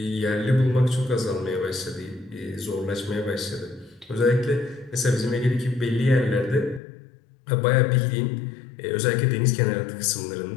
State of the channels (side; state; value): right; drops out; at 6.8 s